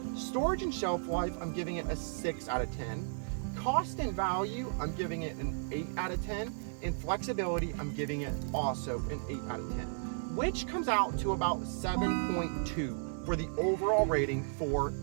Storage and shelf life, I'm giving it a 6 out of 10. Cost and value, I'm giving it an 8 out of 10. And flexibility, I'm giving it also an 8 out of 10, which comes out to about 7.2 for the overall rating for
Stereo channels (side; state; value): left; silent; 55 dB below the other